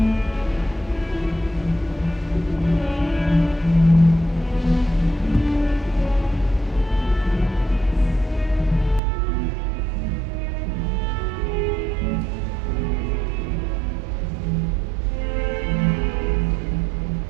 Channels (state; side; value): drops out; left; at 9.0 s